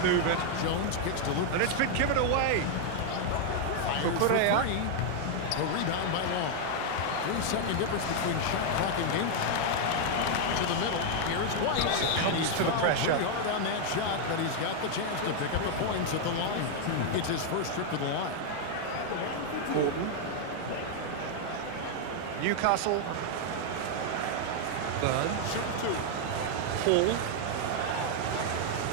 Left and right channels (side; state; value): both; different; correlation 0.00